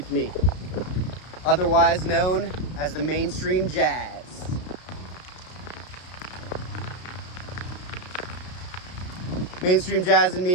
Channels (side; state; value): right; late; 33 ms